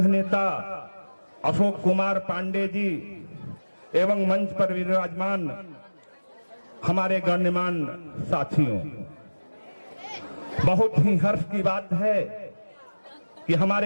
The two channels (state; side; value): inverted; both; correlation -1.00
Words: नेता अशोक कुमार पांडे जी एवं मंच पर विराजमान हमारे गण्यमान साथियों, बहुत ही हर्ष की बात है कि